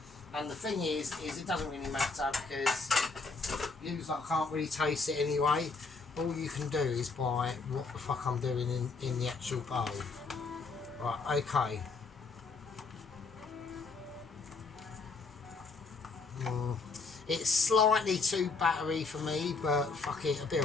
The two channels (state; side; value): quieter; right; 4.2 dB